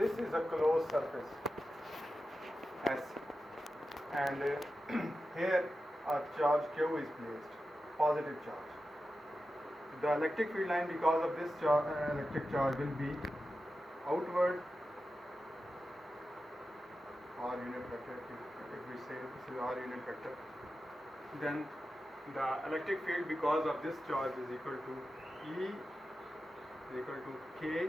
is a closed surface S, and here a charge Q is placed, positive charge. The electric field line, because of this electric charge, will be outward R unit vector. If we say this is R unit vector, then the electric field because of this charge is equal to E is equal to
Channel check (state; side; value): normal; both; correlation 0.92